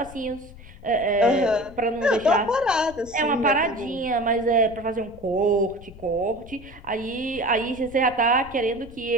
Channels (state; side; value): noise; left; rumble, 18 dB below the sound